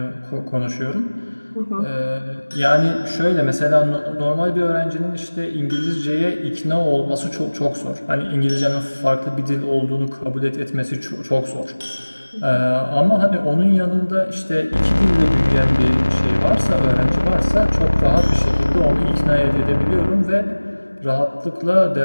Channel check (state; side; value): inverted; both; correlation -1.00